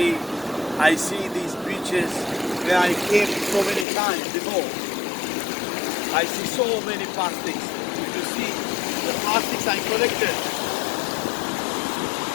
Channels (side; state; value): right; drops out; at 3.9 s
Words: I see these beaches where I came so many times before. I see so many plastics. If you see the plastics I collected,